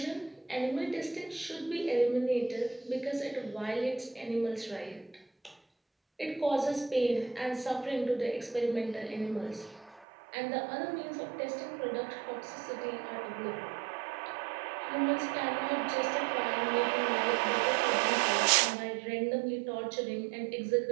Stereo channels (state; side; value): drops out; left; at 10.1 s